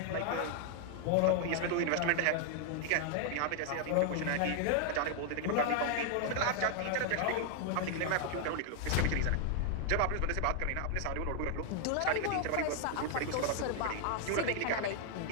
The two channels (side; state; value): both; different; correlation 0.00